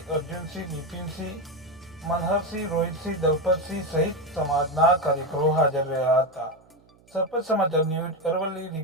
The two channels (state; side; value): noise; right; hum, 29 dB below the sound